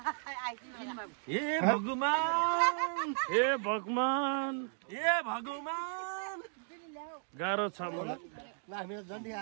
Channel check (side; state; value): left; silent; 54 dB below the other